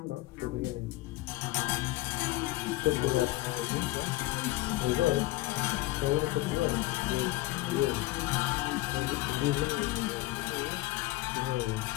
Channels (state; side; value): quieter; right; 18.7 dB